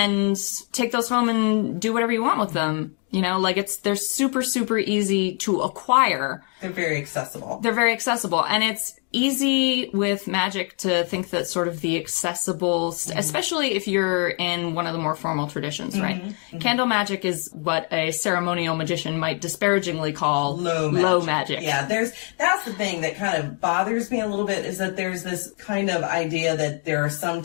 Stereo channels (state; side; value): quieter; right; 36.1 dB